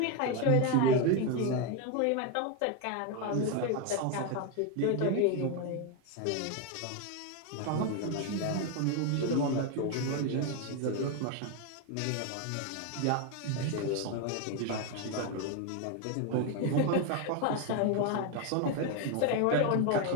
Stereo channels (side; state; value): both; different; correlation 0.02